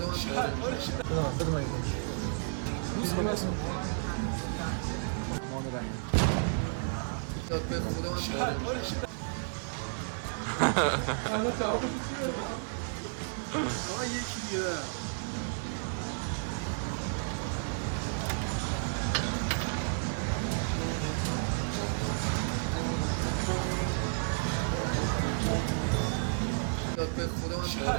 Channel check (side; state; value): left; silent; digital silence